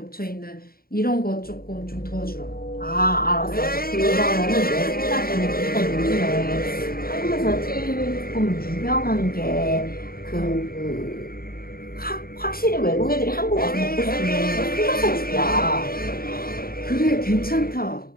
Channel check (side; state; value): right; late; 0.43 ms